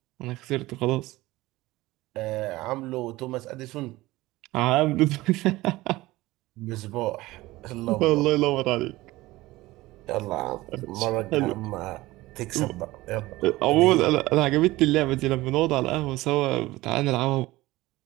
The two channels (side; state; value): left; quieter; 18.8 dB